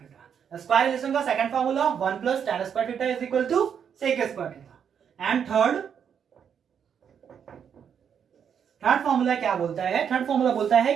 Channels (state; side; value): quieter; left; 7.8 dB